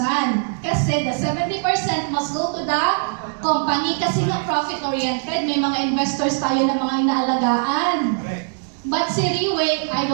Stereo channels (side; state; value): left; silent; 65 dB below the other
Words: Kasi the 70% must go to the company kasi nga profit-oriented. May mga investors tayo na mga inaalagaan. But si Three-Way, I